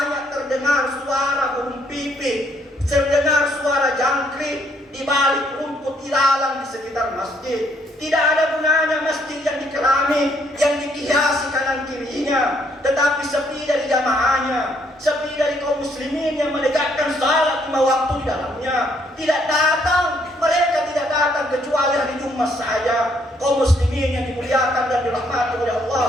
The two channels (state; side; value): normal; both; correlation 0.69